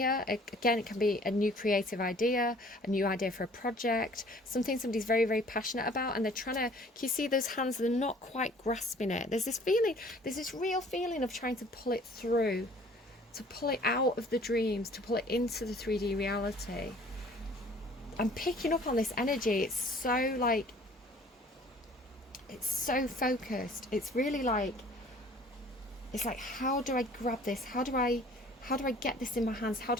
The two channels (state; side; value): normal; both; correlation 0.52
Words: Again, it can be a new creative idea, a new idea for a project, something somebody's very, very passionate about, and they're trying to, can you see those hands? They're not quite grasping it. There's this real feeling of trying to pull it through, to pull it out of the dreams, to pull it into the 3D reality. I'm picking up on this energy. It's so focused. It's really like, it's like, how do I grab this? How do I get this in my hands? How